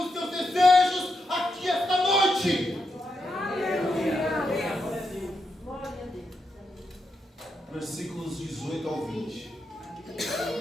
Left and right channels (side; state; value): both; normal; correlation 0.84